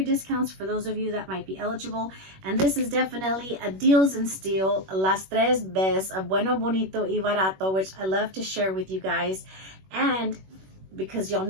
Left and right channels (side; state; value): left; late; 21 ms